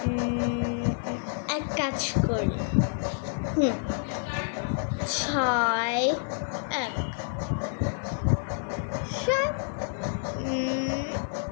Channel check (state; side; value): silent; right; digital silence